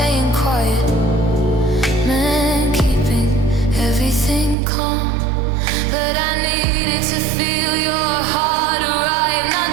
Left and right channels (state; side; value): drops out; left; at 4.5 s